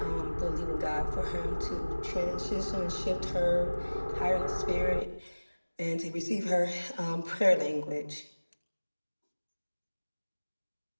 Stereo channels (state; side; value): inverted; both; correlation -1.00